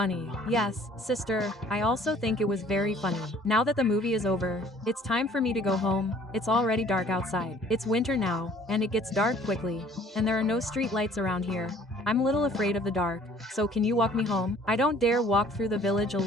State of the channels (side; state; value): both; normal; correlation 0.55